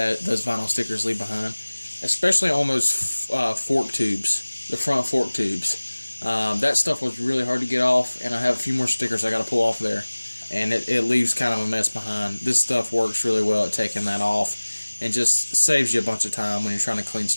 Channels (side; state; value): both; inverted; correlation -1.00